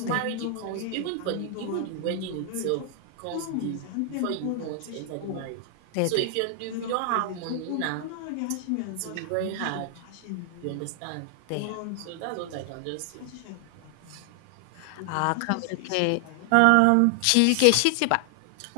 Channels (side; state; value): both; different; correlation 0.00